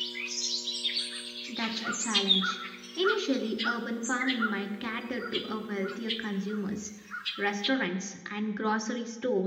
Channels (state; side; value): identical; both; correlation 1.00